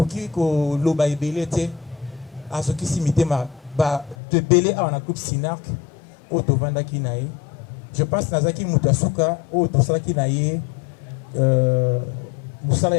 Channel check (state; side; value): drops out; right; at 4.2 s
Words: pu loba ebelete à ce qui s'imite ma de belé à un groupe Sinac au Tovanda Kinaï. Je pense que Nazaki Mutasuka au Tosala Kinaï Moussala